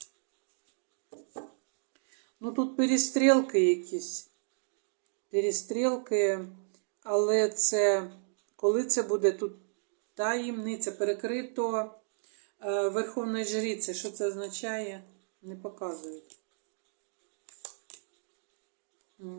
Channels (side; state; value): left; silent; digital silence